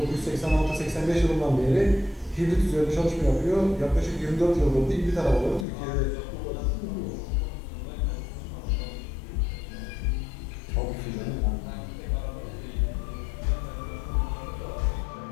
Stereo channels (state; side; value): drops out; right; at 5.7 s